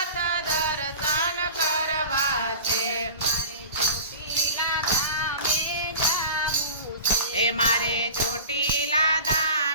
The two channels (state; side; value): inverted; both; correlation -0.38